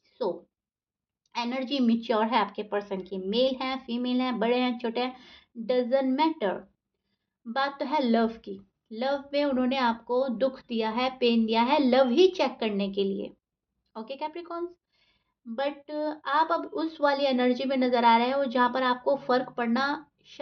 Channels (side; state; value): both; identical; correlation 1.00